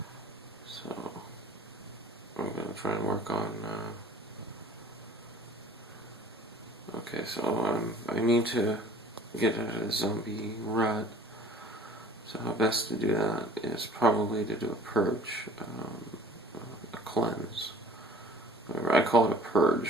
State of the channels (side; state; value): both; normal; correlation 0.49